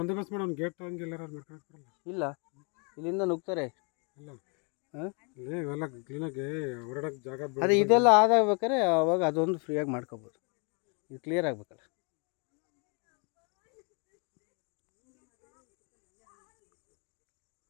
ಮಾಡಿ ಒಂದು ಗೇಟ್ ಹಂಗೆಲ್ಲ ಮಾಡ್ಕೊಳಕ್ ಬರಲ್ಲ. ಇಲ್ಲ, ಇಲ್ಲಿಂದ ನುಗ್ತಾರೆ. ಇಲ್ಲ ಇವೆಲ್ಲ ಕ್ಲೀನಾಗಿ ಓಡಾಡಕ್ಕೆ ಜಾಗ ಅದೇ ಇದೆಲ್ಲ ಆದಾಗ್ಬೇಕಾದ್ರೆ ಅವಾಗ ಅದೊಂದು ಫ್ರೀಯಾಗಿ ಮಾಡ್ಕೋಬೋದು. ಇದು ಕ್ಲಿಯರ್ ಆಗ್ಬೇಕಲ್ಲ.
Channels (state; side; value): quieter; right; 35.1 dB